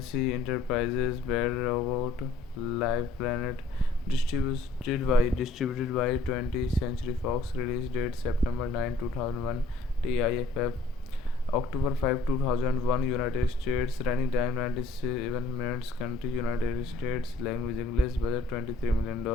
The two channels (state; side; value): quieter; right; 3.3 dB